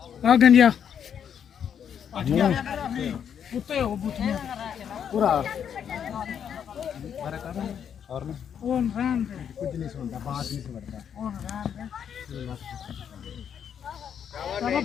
आ गंजिया कुत्ते हो बुतिया पूरा और में ओन राम कुछ नहीं सुनता बात नहीं सुनता ओन राम चलो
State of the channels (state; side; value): quieter; right; 8.3 dB